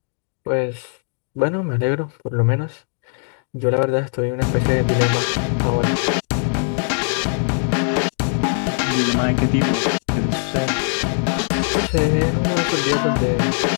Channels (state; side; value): silent; right; 65 dB below the other